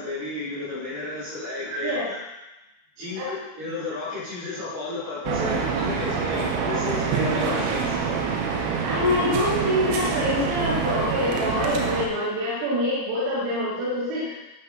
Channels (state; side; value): late; left; 34 ms